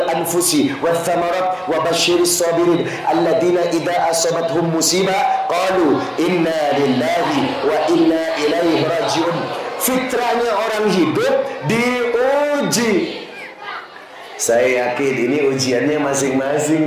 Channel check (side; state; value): both; identical; correlation 1.00